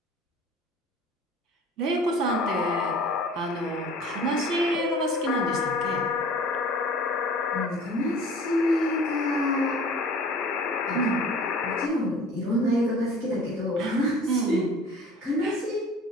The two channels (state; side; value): normal; both; correlation 0.45